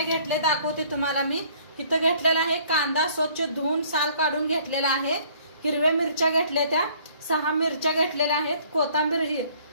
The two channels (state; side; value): inverted; both; correlation -0.58